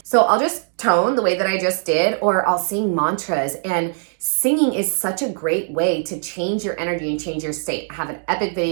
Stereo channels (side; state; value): left; silent; digital silence